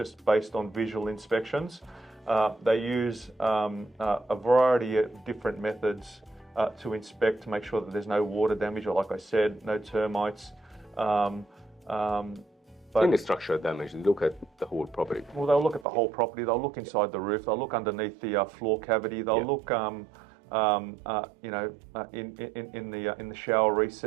based on visual inspections. They use a variety of different methods to inspect to make sure that there's no water damage, or, like I said, no termites. But any structural damage, they look at the whole property. Well, they'll look at the whole property. They'll look inside the roof. They'll look underneath the floor cavity. They'll look, in the shower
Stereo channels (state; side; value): drops out; left; at 15.9 s